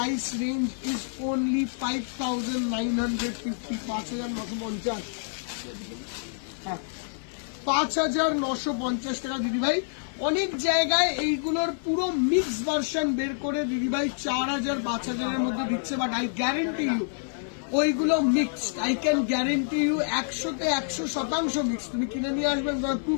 range is only 5,950, 5,950। হ্যাঁ, 5,950 টাকা দিদিভাই। অনেক জায়গায় এইগুলোর পুরো মিক্স ভার্সন বের করে দিদিভাই 4,000, 5,000 এর মধ্যে দিচ্ছে, বাট আই গ্যারেন্টি ইউ ওইগুলো মিক্সড। আই ক্যান গ্যারেন্টি ইউ 100-তে 100% মিক্স। তুমি কিনে নিয়ে আসবেন, তোমার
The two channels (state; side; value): silent; right; 60 dB below the other